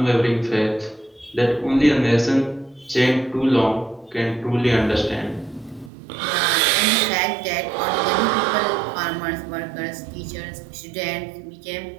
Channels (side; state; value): left; drops out; at 5.9 s